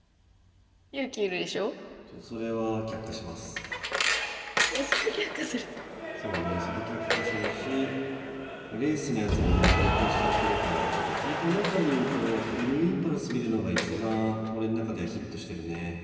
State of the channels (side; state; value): both; identical; correlation 1.00